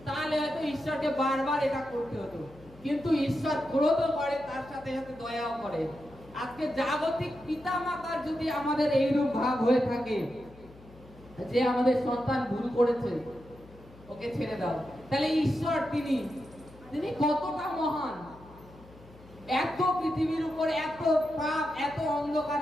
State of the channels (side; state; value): left; noise; hum, 22 dB below the sound